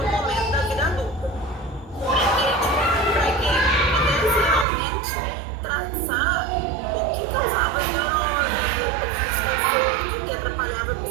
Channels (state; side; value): drops out; left; at 4.7 s